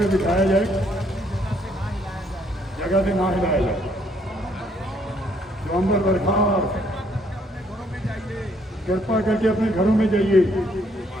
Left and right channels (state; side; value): normal; both; correlation 0.68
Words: बिठाया जाए, जगह से ना हिलाया जाए। जो अंदर बरखार, कृपा करके अपने घरों में जाइए